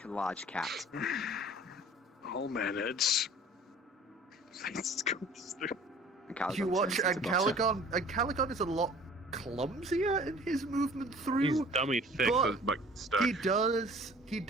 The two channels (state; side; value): normal; both; correlation 0.49